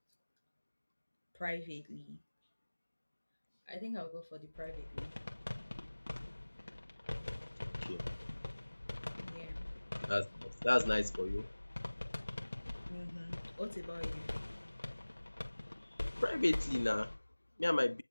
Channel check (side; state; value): both; inverted; correlation -1.00